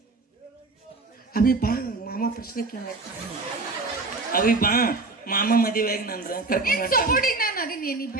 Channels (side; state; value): left; quieter; 3.5 dB